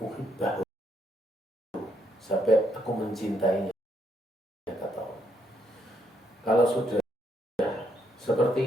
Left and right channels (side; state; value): both; normal; correlation 0.75